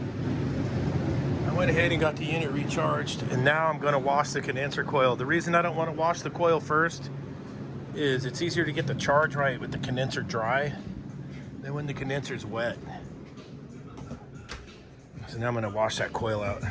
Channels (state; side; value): identical; both; correlation 1.00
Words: went ahead and got the unit recharged, and now I'm going to wash the condenser coil. The reason I don't want to wash the coil first is it's easier to get the charge right with the condenser dry than when the condenser's wet. So now I'm going to wash that coil out.